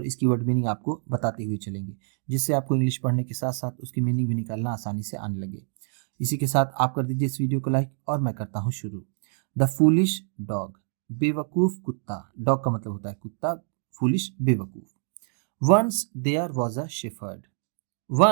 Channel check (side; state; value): left; silent; 59 dB below the other